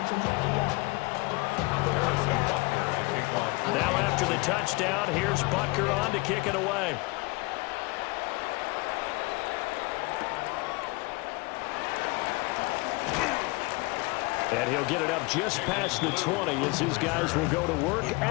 Now after the touchdown, here's Butker on to kick it away. And he'll get it up just past the 20 as his guys will go to work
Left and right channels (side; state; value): right; quieter; 25.4 dB